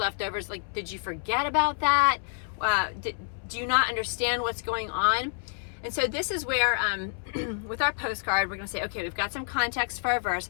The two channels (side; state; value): right; silent; 59 dB below the other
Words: Like, did you forget about that? Do you not understand what's going on? And so this is where, with our postcard, we're going to say, okay, we've got some context for our verse,